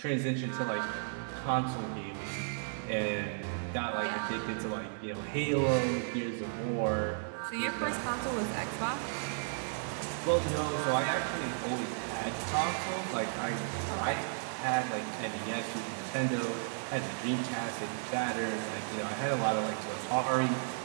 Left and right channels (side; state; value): left; silent; 55 dB below the other